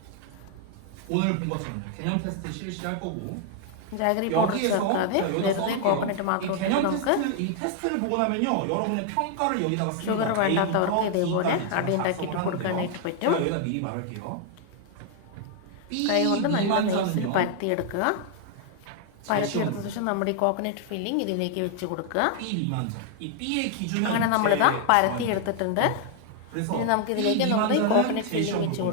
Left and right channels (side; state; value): both; different; correlation 0.00